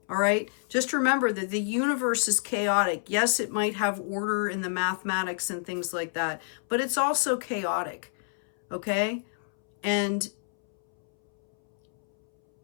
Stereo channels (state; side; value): silent; right; 59 dB below the other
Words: all right? Just remember that the universe is chaotic. Yes, it might have order in the mathematics and things like that, but it's also chaotic, okay? And